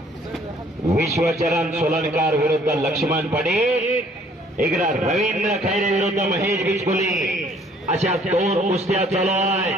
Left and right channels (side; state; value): both; normal; correlation 0.60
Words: विश्वचरण सोलनकर विरुद्ध लक्ष्मण पाटील, इकडे रवींद्र खैरे विरुद्ध महेश बिचकुले, अशा दोन कुस्त्या चालू